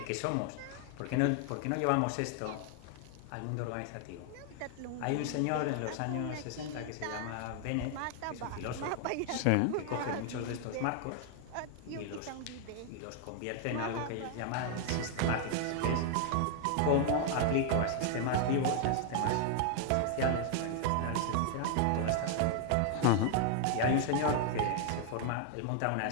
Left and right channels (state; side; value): different; both; correlation 0.00